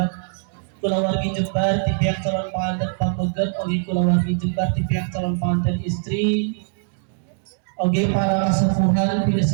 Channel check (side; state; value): left; silent; digital silence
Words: Kula wargi Jembar, di pihak calon pengantin pamegat, oke kula wargi Jembar di pihak calon pengantin istri. Oke, para kesepuhan, pilih